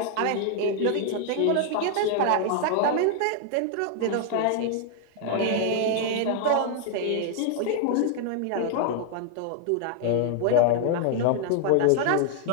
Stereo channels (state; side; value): different; both; correlation 0.00